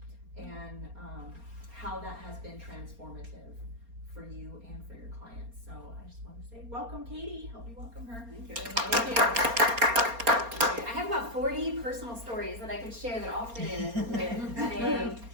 and how that has been transformative for you and for your clients. So I just want to say welcome, Katie. Help me welcome her. Thank you. Thank you. I have about 40 personal stories that I could share that all fit in with today.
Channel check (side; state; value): left; late; 4.3 ms